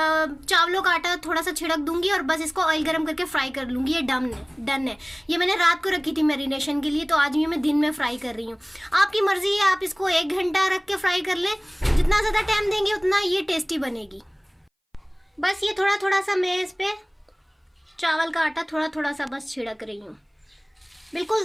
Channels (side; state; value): both; identical; correlation 1.00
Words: चावलों का आटा थोड़ा सा छिड़क दूंगी और बस इसको ऑयल गरम करके फ्राई कर लूंगी। ये डन है। ये मैंने रात को रखी थी मैरिनेशन के लिए, तो आज ये मैं दिन में फ्राई कर रही हूँ। आपकी मर्जी है, आप इसको 1 घंटा रख के फ्राई कर लें। जितना ज्यादा टाइम देंगे उतना ये टेस्टी बनेगी। बस ये थोड़ा थोड़ा सा मैं इस पे चावल का आटा थोड़ा थोड़ा सा बस छिड़क रही हूँ। बिल्कुल